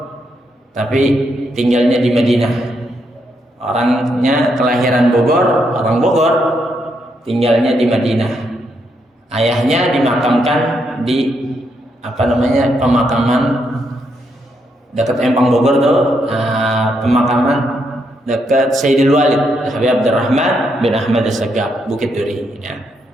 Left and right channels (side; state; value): both; normal; correlation 0.78